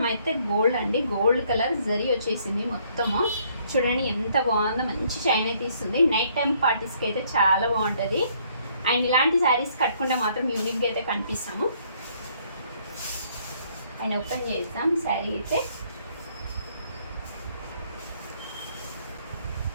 అయితే గోల్డ్ అండి, గోల్డ్ కలర్ జరీ వచ్చేసింది మొత్తము. చూడండి ఎంత బాగుందో, మంచి షైన్ అయితే ఇస్తుంది. నైట్ టైం పార్టీస్కి అయితే చాలా బాగుంటుంది. అండ్ ఇలాంటి శారీస్ కట్టుకుంటే మాత్రం యూనిక్గా అయితే కనిపిస్తాము. అండ్ ఓపెన్ చేద్దాం శారీ అయితే.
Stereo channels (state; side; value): inverted; both; correlation -0.66